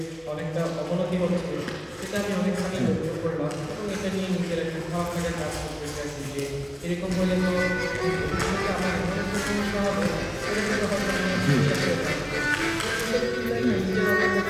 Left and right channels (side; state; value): both; identical; correlation 1.00